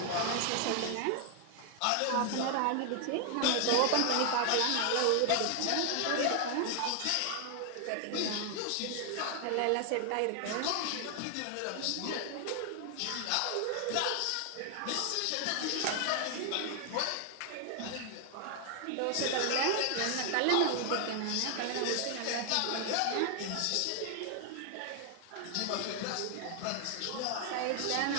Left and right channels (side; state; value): both; different; correlation 0.00